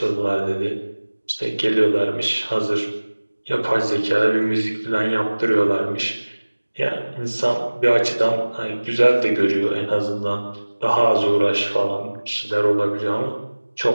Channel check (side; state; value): both; inverted; correlation -1.00